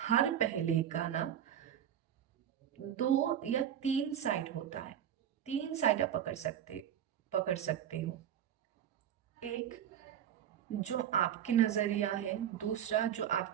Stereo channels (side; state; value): left; quieter; 9.9 dB